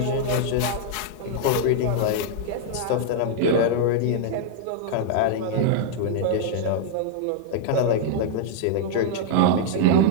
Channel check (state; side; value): different; both; correlation -0.01